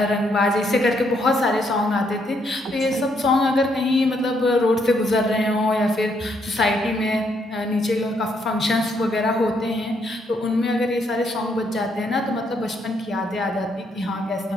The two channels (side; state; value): both; normal; correlation 0.74